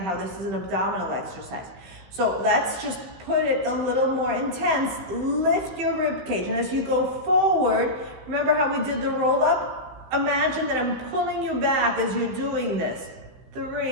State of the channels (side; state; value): left; late; 15 ms